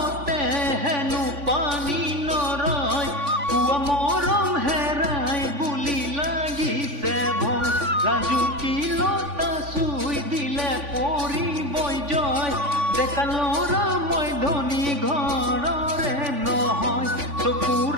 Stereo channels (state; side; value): late; left; 3.5 ms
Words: হেনো পানী নৰয় পুৱা মৰম হেৰাই বুলি লাগিছে ভয় ৰাজুকি লতা চুই দিলে পৰিবই জয় ডেকা ল'ৰা মই ধনী ঘৰ